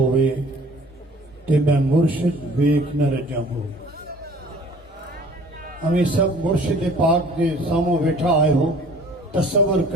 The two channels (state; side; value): normal; both; correlation 0.50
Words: تے میں مرشد ویکھ نہ رجا ہو۔ ہمیں سب مرشد پاک دے سامو بیٹھا آئے ہو، تصور